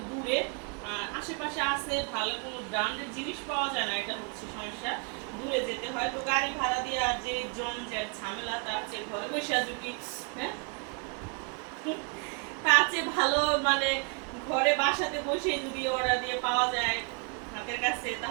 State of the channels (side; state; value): left; quieter; 38.1 dB